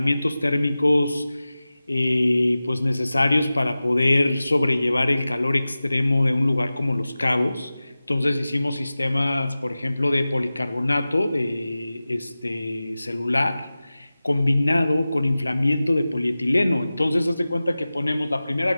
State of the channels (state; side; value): inverted; both; correlation -0.96